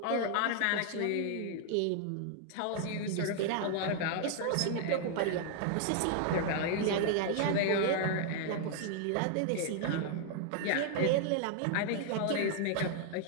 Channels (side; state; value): both; different; correlation 0.00